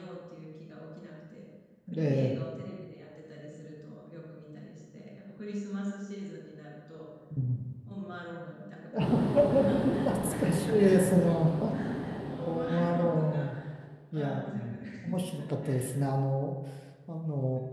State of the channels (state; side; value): identical; both; correlation 1.00